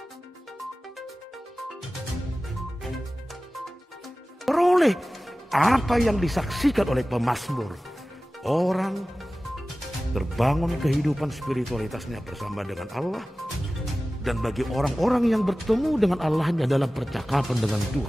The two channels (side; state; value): both; normal; correlation 0.96